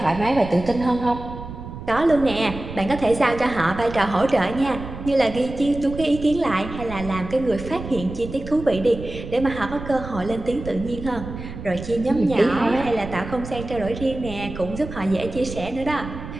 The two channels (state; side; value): noise; right; rumble, 10 dB below the sound